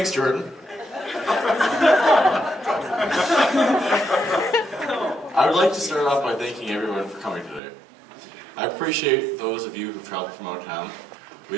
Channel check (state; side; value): drops out; left; at 7.6 s